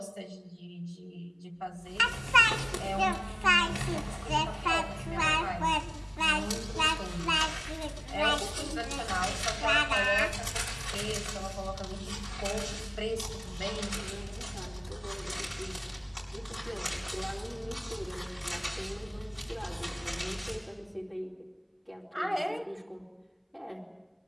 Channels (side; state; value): both; identical; correlation 1.00